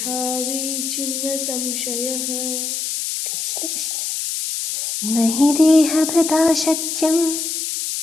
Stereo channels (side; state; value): left; noise; hiss, 3 dB below the sound